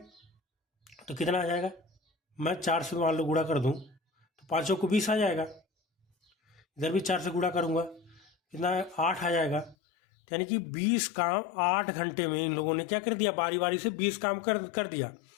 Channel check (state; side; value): drops out; right; at 9.8 s